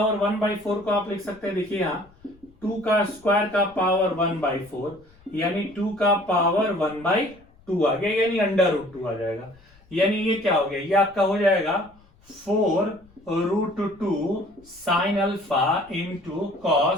1/4 को आप लिख सकते हैं, देखिए यहाँ 2 का स्क्वायर का पावर 1/4 यानी 2 का पावर 1/2 आ गया, यानी √2 आ जाएगा। यानी ये क्या हो गया, ये आपका हो जाएगा 4√2 sine alpha into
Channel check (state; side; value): noise; left; rumble, 28 dB below the sound